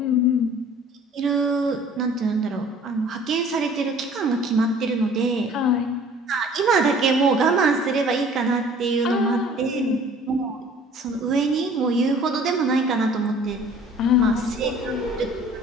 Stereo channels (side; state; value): both; normal; correlation 0.51